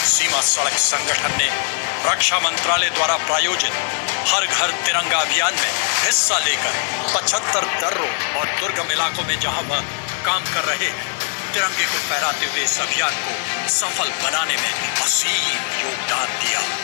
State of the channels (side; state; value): right; silent; digital silence